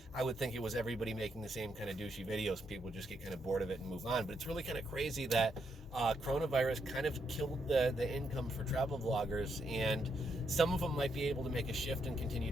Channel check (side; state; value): both; normal; correlation 0.78